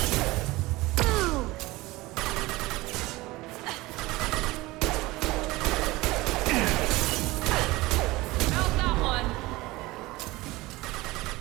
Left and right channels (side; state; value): left; quieter; 20.3 dB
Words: How's that one?